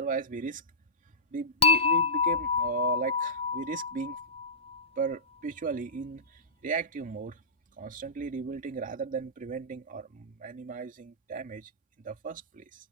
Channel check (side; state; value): both; normal; correlation -0.16